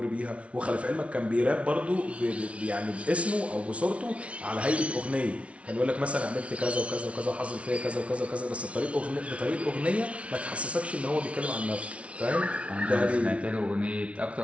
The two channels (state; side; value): late; left; 0.062 ms